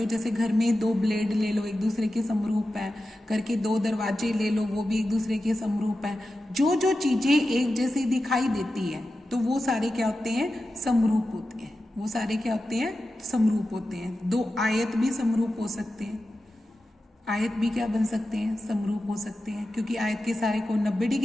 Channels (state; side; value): normal; both; correlation 0.92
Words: हो, जैसे घर में 2 ब्लेड ले लो, एक दूसरे के समरूप है, करके 2 दरवाजे ले लो, वो भी एक दूसरे के समरूप है। जो जो चीजें एक जैसी दिखाई देती है, तो वो सारे क्या होते हैं, समरूप होते हैं, वो सारे क्या होते हैं, समरूप होते हैं। 2 आयत भी समरूप हो सकते हैं, आयत भी क्या बन सकते हैं, समरूप हो सकते हैं, क्योंकि आयत के सारे कोण 90